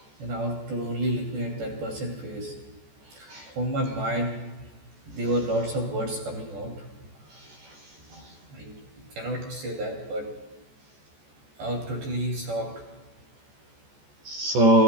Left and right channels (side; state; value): left; late; 14 ms